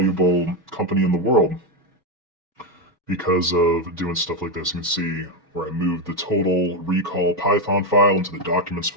company in the world because of doing stuff like this. You can see where I moved the total recall Python file into the documents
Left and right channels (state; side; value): normal; both; correlation 0.07